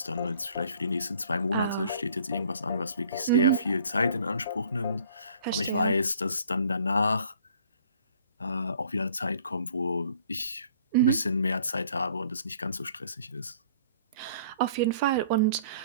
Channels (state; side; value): inverted; both; correlation -0.55